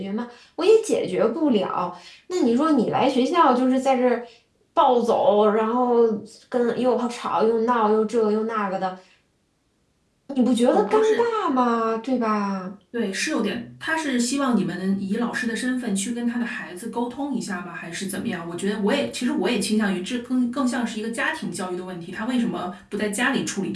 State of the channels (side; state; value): both; identical; correlation 1.00